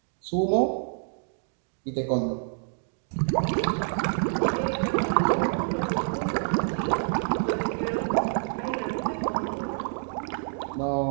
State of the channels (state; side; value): silent; left; digital silence